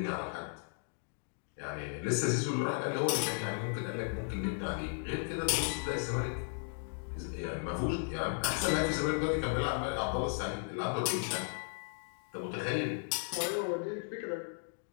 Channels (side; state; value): right; silent; 54 dB below the other